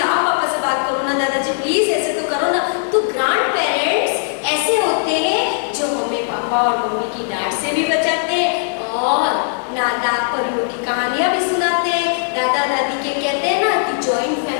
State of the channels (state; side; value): silent; right; digital silence